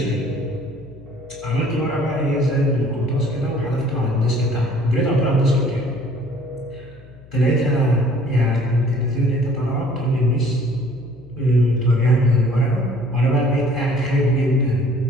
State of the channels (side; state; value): left; noise; hum, 23 dB below the sound